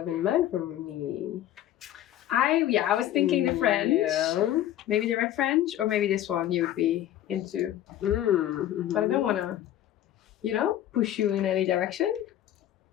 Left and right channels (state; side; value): quieter; right; 12.4 dB